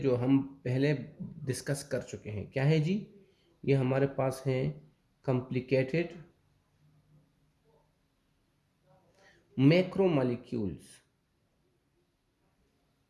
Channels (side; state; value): both; identical; correlation 1.00